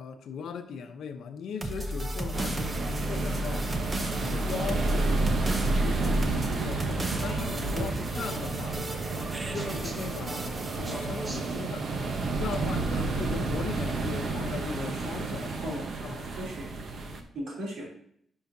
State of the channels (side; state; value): both; normal; correlation 0.78